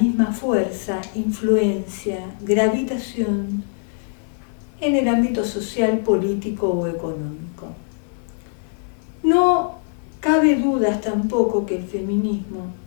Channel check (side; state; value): right; silent; digital silence